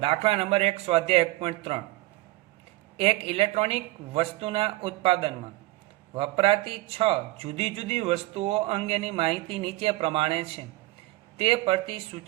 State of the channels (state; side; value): quieter; left; 19.2 dB